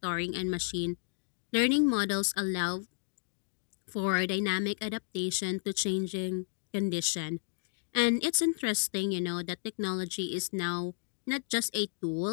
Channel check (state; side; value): silent; right; digital silence